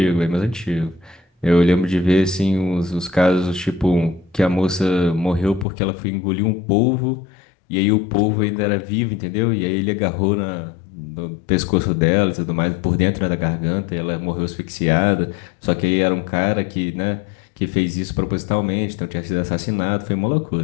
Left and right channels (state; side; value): drops out; right; at 5.7 s